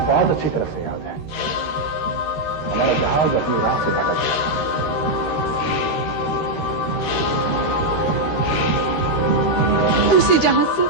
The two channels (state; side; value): late; right; 13 ms